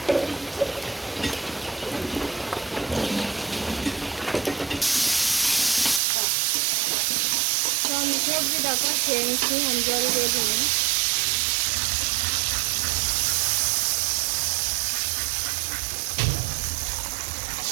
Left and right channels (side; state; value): left; drops out; at 6.0 s